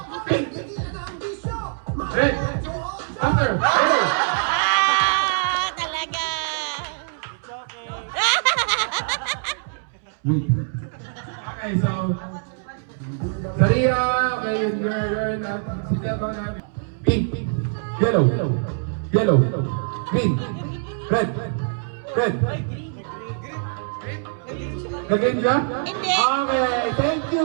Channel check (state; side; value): silent; left; 63 dB below the other